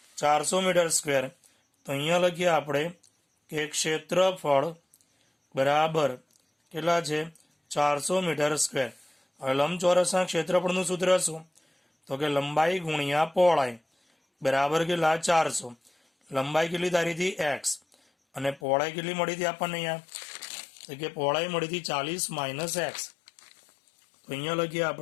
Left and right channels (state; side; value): drops out; right; at 18.6 s